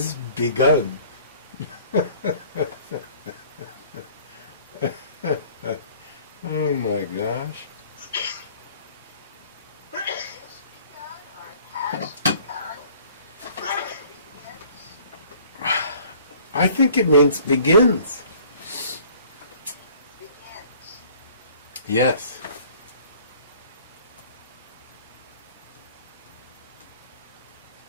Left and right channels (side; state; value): both; inverted; correlation -0.53